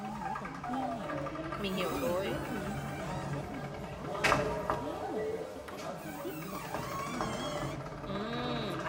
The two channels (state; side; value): identical; both; correlation 1.00